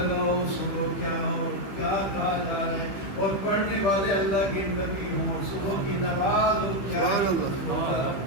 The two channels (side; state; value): right; late; 15 ms